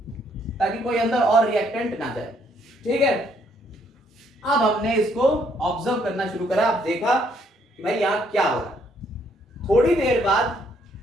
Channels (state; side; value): normal; both; correlation 0.69